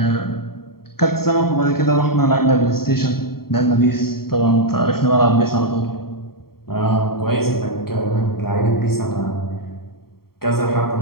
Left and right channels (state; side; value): late; right; 0.94 ms